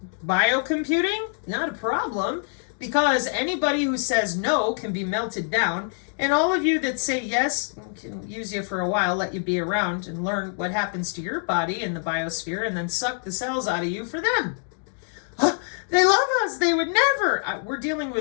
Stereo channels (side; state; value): right; silent; 62 dB below the other